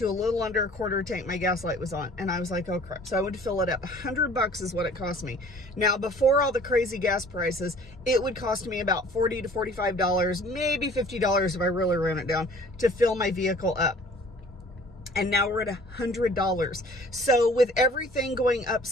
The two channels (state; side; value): normal; both; correlation 0.51